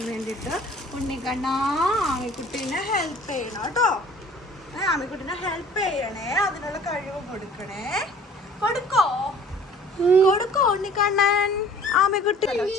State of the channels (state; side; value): normal; both; correlation 0.50